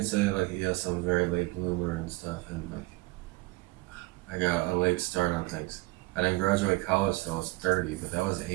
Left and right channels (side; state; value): left; quieter; 21.7 dB